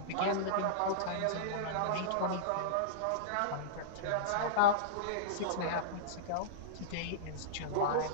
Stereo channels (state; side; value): different; both; correlation -0.03